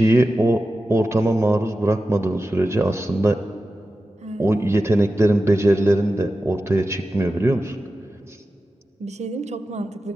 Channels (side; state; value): both; normal; correlation 0.93